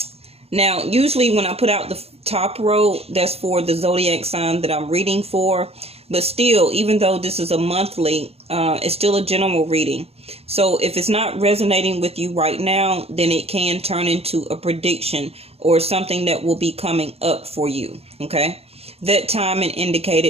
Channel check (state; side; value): late; left; 0.29 ms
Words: Now, usually when I put out the top row, that's for the zodiac sign that I'm reading for. But still, even though this is a monthly, it's still a general reading. So if it's not resonating with you right now, then it can turn into a prediction or something that will be coming up for you. Okay. That time and